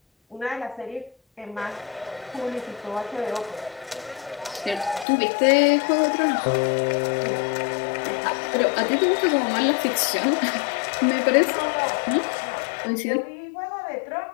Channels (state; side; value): drops out; right; at 5.1 s